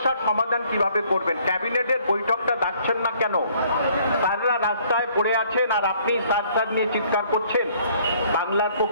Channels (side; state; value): both; inverted; correlation -0.61